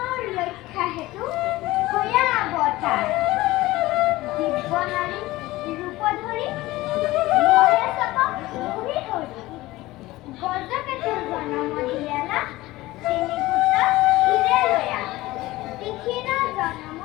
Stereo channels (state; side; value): quieter; right; 18.3 dB